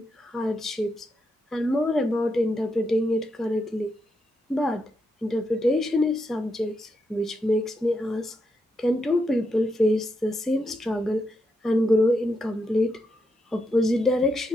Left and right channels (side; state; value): both; normal; correlation 0.83